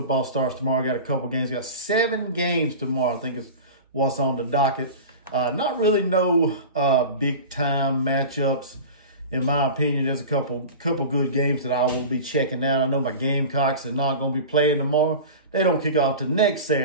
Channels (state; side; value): inverted; both; correlation -0.33